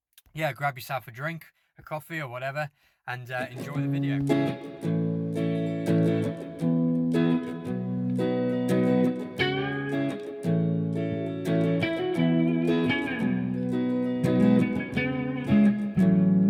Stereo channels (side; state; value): both; identical; correlation 1.00